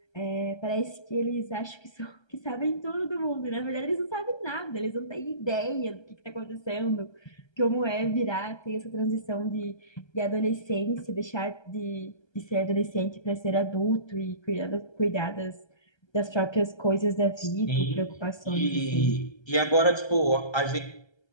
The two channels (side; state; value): right; late; 1.3 ms